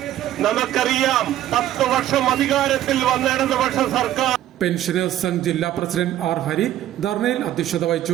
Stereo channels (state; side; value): quieter; left; 12.6 dB